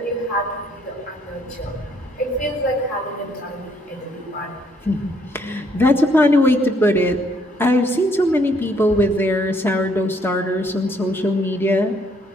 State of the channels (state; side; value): normal; both; correlation 0.68